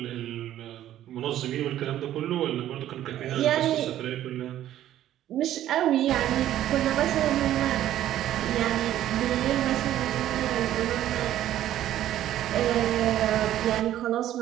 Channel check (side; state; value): left; quieter; 12.5 dB